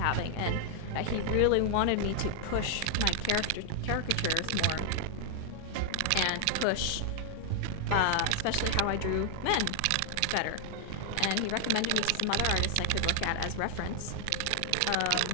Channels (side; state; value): both; different; correlation 0.00